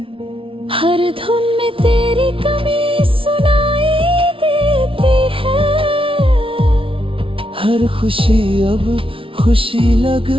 हर धुन में तेरी कमी सुनाई देती है, हर खुशी अब खुशी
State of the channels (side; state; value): left; late; 0.26 ms